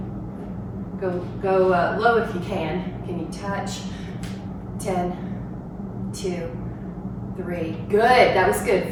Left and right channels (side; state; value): both; identical; correlation 1.00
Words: Go low if you can. Can you touch? 10, 2, 3. Good. That was good.